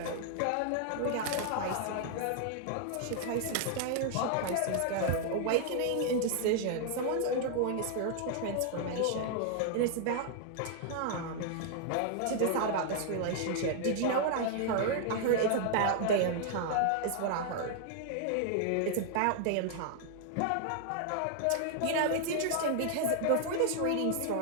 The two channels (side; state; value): both; different; correlation 0.00